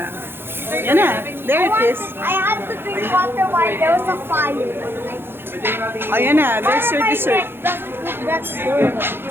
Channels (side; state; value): left; late; 0.11 ms